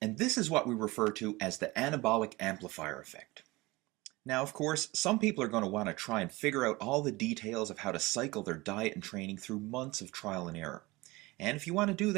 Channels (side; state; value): left; quieter; 21.9 dB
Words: And this is what we refer to as the anabolic amplifier effect. Now, of course, some people are going to want to try and figure out all the details of how to cycle their diet and training through months of trial and error. And if you want to do